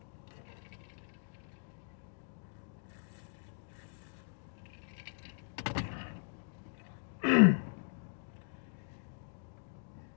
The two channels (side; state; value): right; silent; digital silence